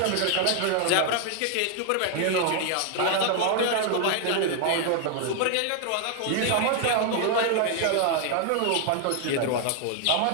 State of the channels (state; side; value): different; both; correlation 0.00